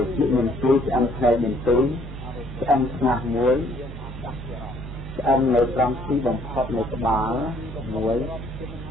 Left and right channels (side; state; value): both; normal; correlation 0.62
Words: chuyện miền tây sẽ ăn theo miền tây ăn ngạc muối ăn lấy rong xí bằng khóc lấy cái bá muối